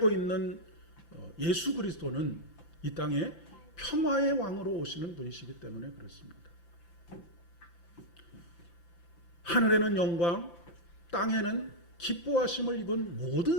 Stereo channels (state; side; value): late; right; 5.9 ms